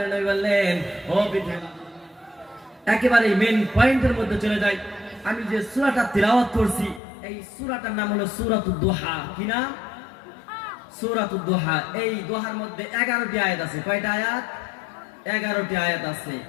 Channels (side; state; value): right; drops out; at 7.0 s